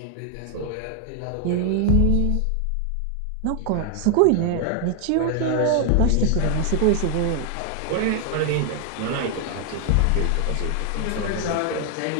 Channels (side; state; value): both; different; correlation 0.00